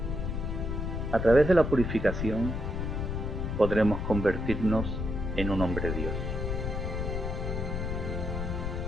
a través de la purificación podremos convertirnos en un hombre Dios.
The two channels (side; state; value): left; noise; rumble, 2 dB below the sound